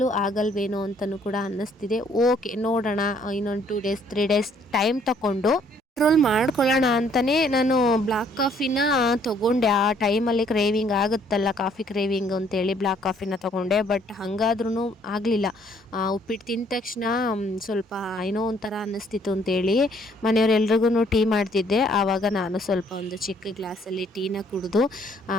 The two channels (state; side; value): normal; both; correlation 0.63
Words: ಆಗಲ್ವೇನೋ ಅಂತಲೂ ಕೂಡ ಅನ್ನಿಸ್ತಿದೆ. ಓಕೆ, ನೋಡೋಣ, ಇನ್ನೊಂದು 2 ಡೇಸ್ 3 ಡೇಸ್ ಟೈಮ್ ತಗೊಂಡು ಕಂಟ್ರೋಲ್ ಮಾಡ್ಕೊಳ್ಳೋಣ ಅಂತಲೇ ನಾನು ಬ್ಲ್ಯಾಕ್ ಕಾಫಿನ ತೊಗೊಂಡೆ. ಆ ಟೈಮಲ್ಲಿ ಕ್ರೇವಿಂಗ್ ಆಗುತ್ತಲ್ಲ, ಕಾಫಿ ಕ್ರೇವಿಂಗ್ ಅಂತೇಳಿ ಬ್ಲ್ಯಾಕ್ ಕಾಫಿನ ತೊಗೊಂಡೆ. ಬಟ್ ಹಾಗಾದ್ರೂ ಆಗಲಿಲ್ಲ. ಉಪ್ಪಿಟ್ಟು ತಿಂದ ತಕ್ಷಣ ಸ್ವಲ್ಪ ಏನೋ ಒಂಥರ ಅನ್ನಿಸ್ತಿತ್ತು ಅಂತೇಳಿ ಮನೆಯವರೆಲ್ರಿಗೂ ಟೀ ಮಾಡ್ತಿದ್ದೆ. ಆವಾಗ ನಾನು ಸ್ವಲ್ಪ ಒಂದು ಚಿಕ್ಕ ಗ್ಲಾಸಲ್ಲಿ ಟೀನ ಕುಡಿದು